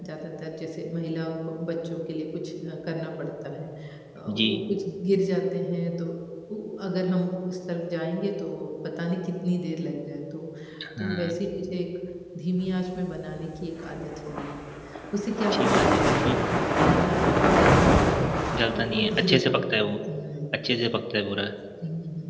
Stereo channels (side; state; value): both; identical; correlation 1.00